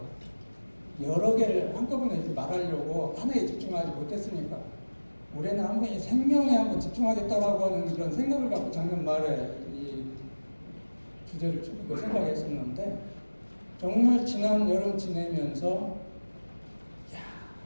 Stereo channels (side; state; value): both; inverted; correlation -1.00